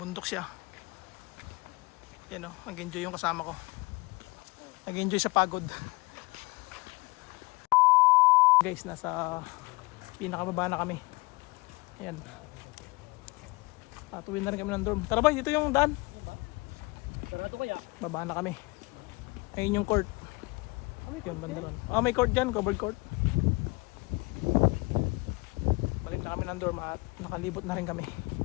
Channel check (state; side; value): quieter; right; 25.2 dB